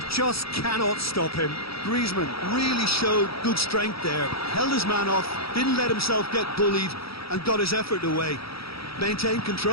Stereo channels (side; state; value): right; late; 0.76 ms